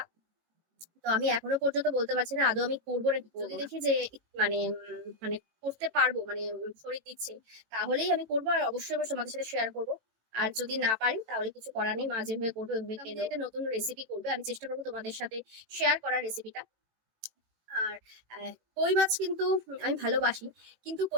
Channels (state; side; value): late; left; 18 ms